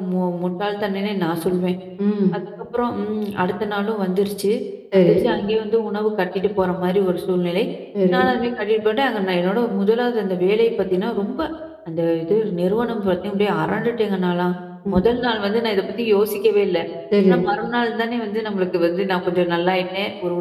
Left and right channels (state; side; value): identical; both; correlation 1.00